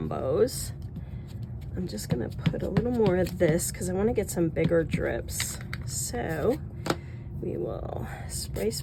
I'm just gonna put a little more of this because I want to get some bigger drips. So we will spray,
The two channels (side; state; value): both; identical; correlation 1.00